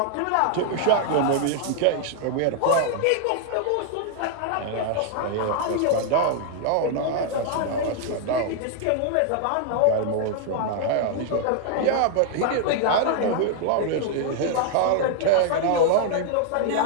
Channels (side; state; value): both; different; correlation 0.00